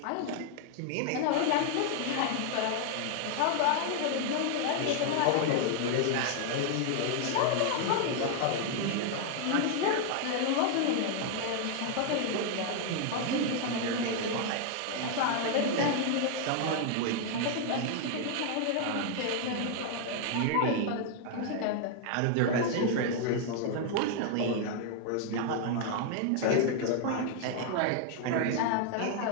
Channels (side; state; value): both; different; correlation 0.00